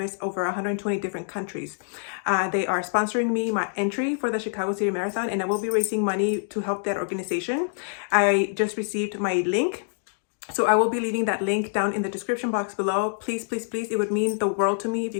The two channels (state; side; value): silent; right; digital silence